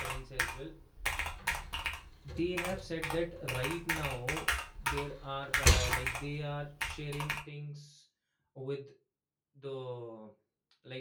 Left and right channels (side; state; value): both; identical; correlation 1.00